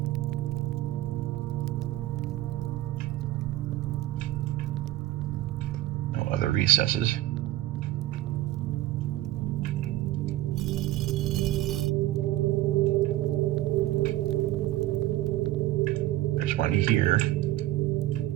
No other recesses. There's one here.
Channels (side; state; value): left; quieter; 15.4 dB